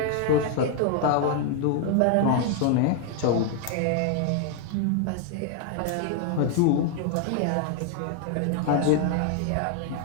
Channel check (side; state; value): both; different; correlation 0.00